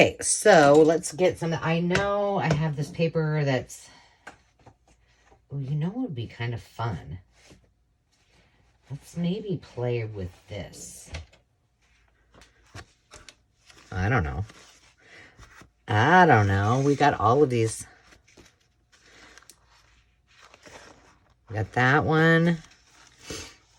so let's get some. I know I have this paper that's, well, you know what would be kind of fun? Let's maybe play with this. I don't know. We got all of these. We got that one.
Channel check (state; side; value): identical; both; correlation 1.00